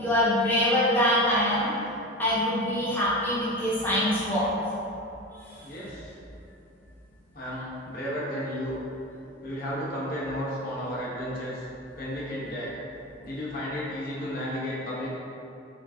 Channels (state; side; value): normal; both; correlation 0.26